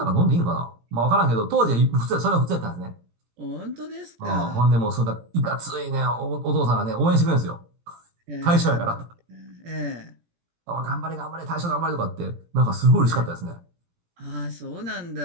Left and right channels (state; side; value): late; left; 17 ms